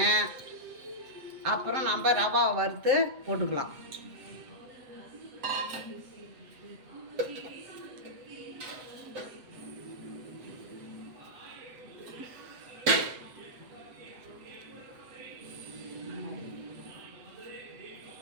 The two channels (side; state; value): left; late; 7.9 ms